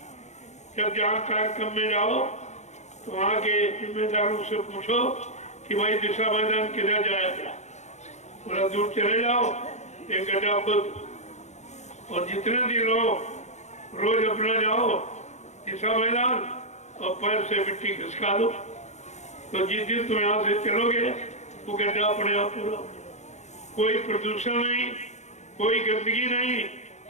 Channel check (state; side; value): late; right; 0.33 ms